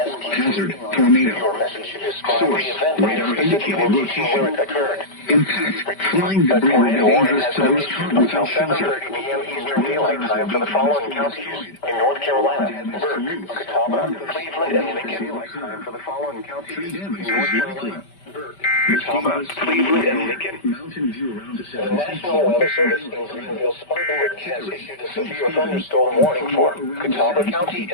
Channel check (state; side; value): late; right; 5.1 ms